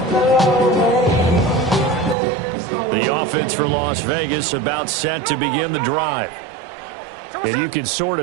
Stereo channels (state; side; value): drops out; left; at 2.1 s